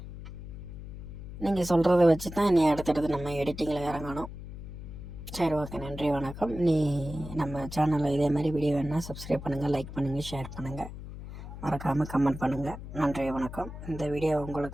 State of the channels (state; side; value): noise; left; hum, 11 dB below the sound